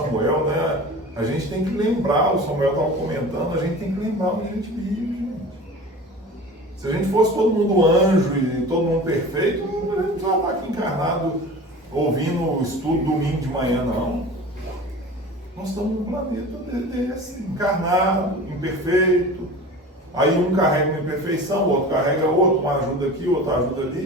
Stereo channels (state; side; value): normal; both; correlation 0.37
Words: né? A gente tem que lembrar, o Samuel estava comentando, a gente tem que lembrar onde a gente vive, gente. Se a gente fosse todo mundo anjo e todo mundo perfeito, a gente já está aqui encarnado ouvindo o estudo domingo de manhã, não. Nós estamos num planeta desse, encarnado, imperfeito, Aí um carrega uma imperfeição, o outro carrega outro, um ajuda aqui, outro ajuda